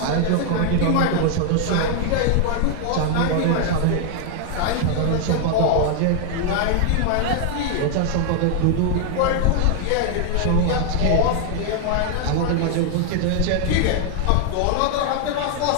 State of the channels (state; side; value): different; both; correlation 0.00